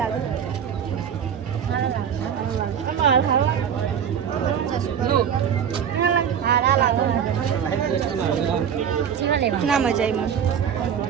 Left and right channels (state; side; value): quieter; left; 8.2 dB